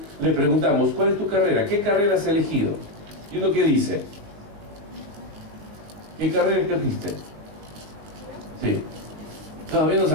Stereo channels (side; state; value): left; late; 19 ms